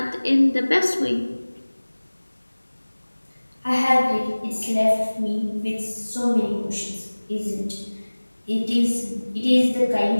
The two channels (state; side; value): inverted; both; correlation -1.00